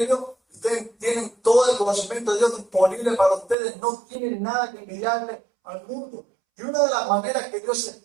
ustedes tienen todo el conocimiento de Dios disponible para ustedes, no tienen nada que envidiarle al mundo. Y una de las maneras que Dios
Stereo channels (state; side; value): drops out; left; at 3.6 s